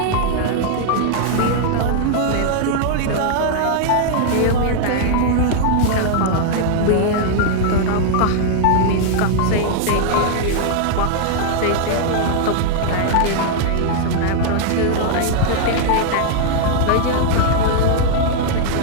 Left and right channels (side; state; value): both; different; correlation -0.01